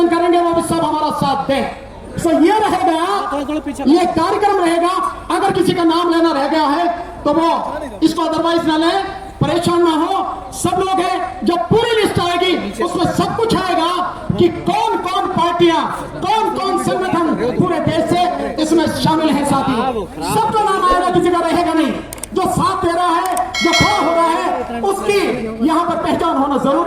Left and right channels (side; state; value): both; identical; correlation 1.00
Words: करेंगे वो भी सब हमारा साथ दें। तो ये रहेगा, ये कार्यक्रम रहेगा। अगर किसी का नाम लेना रह गया है तो वो इसको अदरवाइज ना ले, परेशान ना हो। सब लोग हैं, जब पूरी लिस्ट आएगी उसमें सब कुछ आएगा कि कौन कौन पार्टियां, कौन कौन संगठन पूरे देश से इसमें शामिल हैं। साथी सबका नाम आएगा, किसी का रहेगा नहीं। जो साथ दे रहा है, जो खड़ा हो रहा है, उसकी यहाँ पर पहचान होना